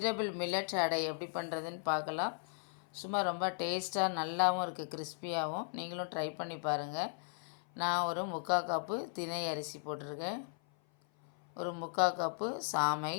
millet அடை எப்படி பண்ணுறதுன்னு பார்க்கலாம். சும்மா ரொம்ப டேஸ்ட்டாக நல்லாவும் இருக்குது, கிறிஸ்பியாகவும். நீங்களும் ட்ரை பண்ணி பாருங்கள். நான் ஒரு 3/4 கப்பு தினை அரிசி போட்டிருக்கேன். ஒரு 3/4 கப்பு சாமை.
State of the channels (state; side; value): silent; right; 53 dB below the other